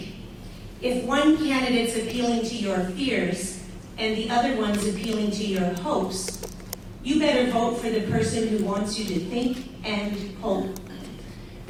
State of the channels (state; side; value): identical; both; correlation 1.00